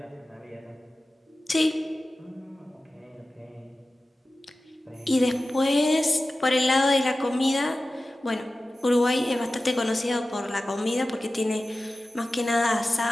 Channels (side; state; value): both; normal; correlation 0.95